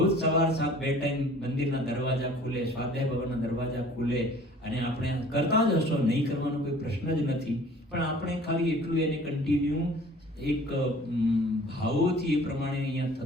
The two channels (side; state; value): both; normal; correlation 0.49